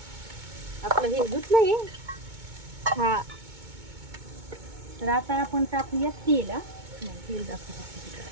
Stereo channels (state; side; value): late; left; 2.2 ms